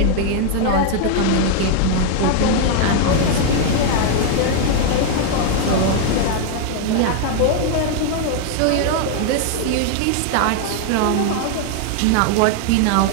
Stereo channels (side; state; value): both; different; correlation 0.00